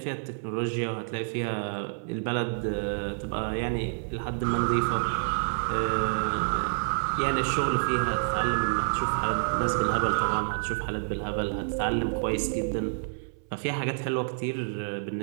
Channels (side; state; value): left; silent; 59 dB below the other